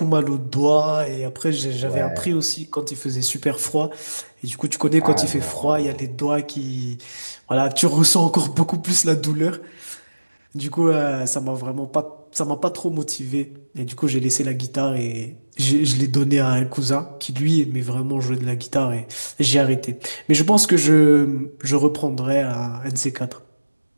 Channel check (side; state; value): both; inverted; correlation -1.00